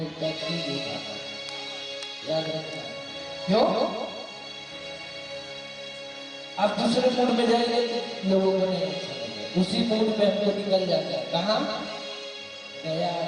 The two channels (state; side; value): identical; both; correlation 1.00